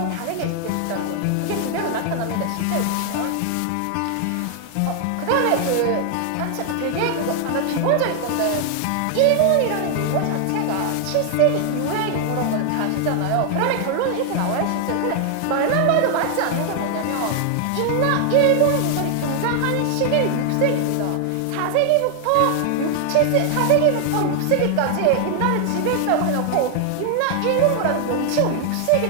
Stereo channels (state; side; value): different; both; correlation 0.00